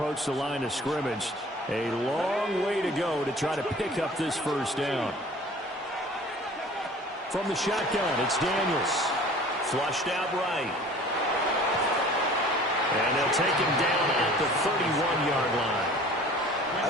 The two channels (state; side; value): normal; both; correlation 0.47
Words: the line of scrimmage. A long way to go to try to pick up this first down. From the shotgun, it's Daniels. Flushed out right. And they'll take him down at the 31-yard line. I